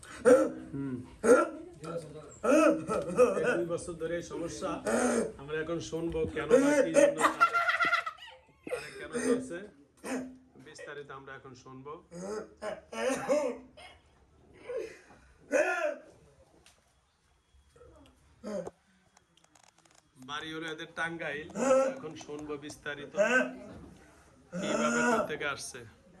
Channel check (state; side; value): identical; both; correlation 1.00